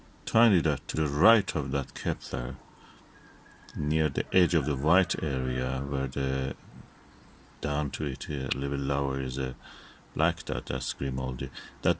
tiny dot to the right of that Kepler, near the edge of the white area, where the down to it a little lower is a black dot, that's Grimaldi. That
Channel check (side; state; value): both; identical; correlation 1.00